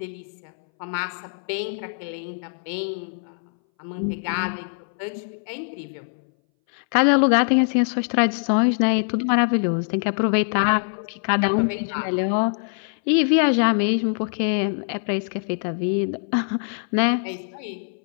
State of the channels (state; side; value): silent; right; 61 dB below the other